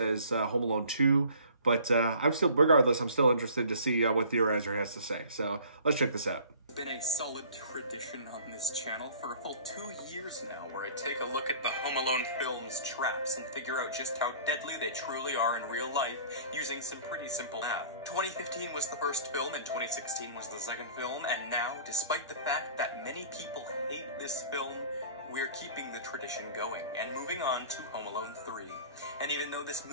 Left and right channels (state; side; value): inverted; both; correlation -0.48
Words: Home Alone 2, but regardless, I'm still interested to see what Theorizer has to say. So let's check this out. It's been a solid tradition on this channel for a full 2 years now, where I take a look at the Home Alone films' traps and figure out just how deadly they truly are in real life using some pretty simple math. 2015 was the first film and 2016 was the second film, and now, despite the fact that many people hate this film, we're keeping the tradition going and moving on to Home Alone 3. And even though this